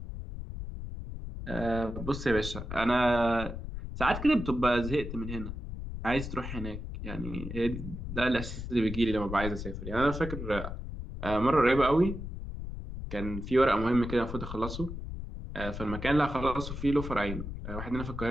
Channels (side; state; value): left; noise; rumble, 7 dB below the sound